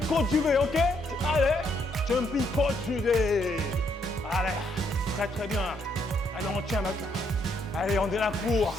coach Juvé, ok? Allez, jumping coach Juvé. Allez, très bien. Allez, on tient maintenant. Allez, on est là pour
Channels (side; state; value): both; normal; correlation 0.73